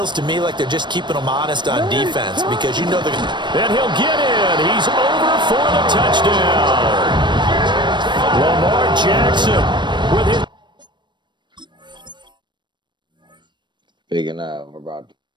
to me like they're just keeping them honest on defense because you know they're going to... And he'll get in. He's over for the touchdown. Lamar Jackson with his... Big enough, bro.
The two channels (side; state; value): left; late; 0.22 ms